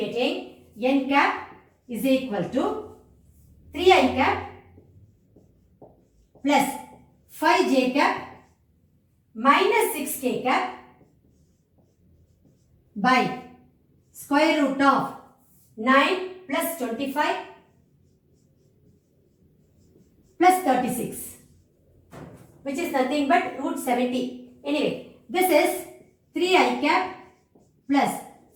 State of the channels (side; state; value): both; identical; correlation 1.00